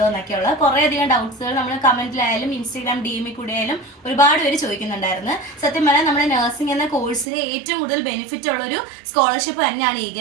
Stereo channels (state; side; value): drops out; left; at 7.2 s